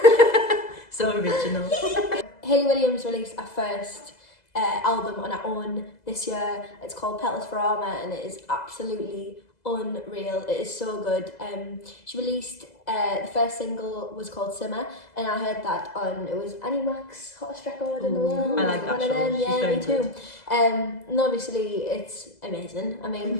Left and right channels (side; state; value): right; late; 2.0 ms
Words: So original. Hayley Williams released her first album on her own this year. It's called Petals for Armour and it is absolutely unreal. It is so good. She released the first single was called Simmer, and I heard that on, it was Annie Mac's hottest record in the world. I like that One of show. them. She's Yeah, very me too. good. And obviously it's amazing. I